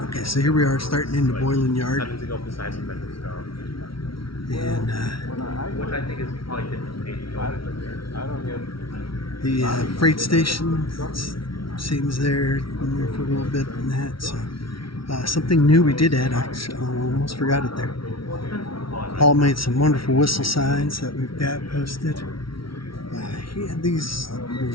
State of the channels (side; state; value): right; late; 0.74 ms